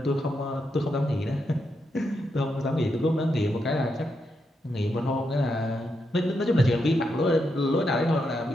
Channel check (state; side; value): normal; both; correlation 0.83